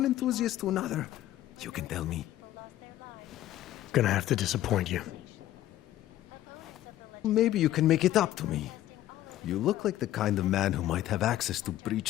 enthusiast to another, you can tell me. Gonna have to disappoint you. Maybe you can make it up to me. You look like the kind of man who might have access to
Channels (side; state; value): right; quieter; 13.7 dB